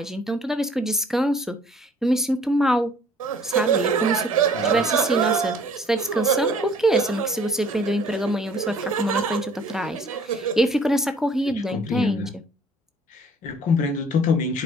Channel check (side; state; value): both; normal; correlation 0.55